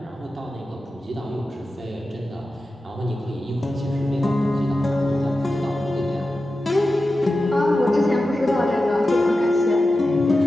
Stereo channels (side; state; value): both; normal; correlation 0.93